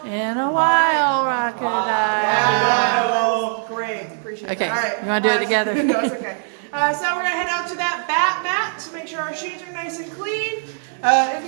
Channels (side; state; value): left; silent; 65 dB below the other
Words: In a while, crocodile. Great, appreciate it. Okay, All right. you want to do it together? No, it's okay. So we're gonna head out to that bat mat to make sure our shoes are nice and clean. If